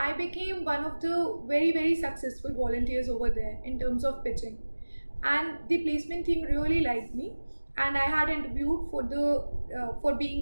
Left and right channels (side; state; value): both; inverted; correlation -1.00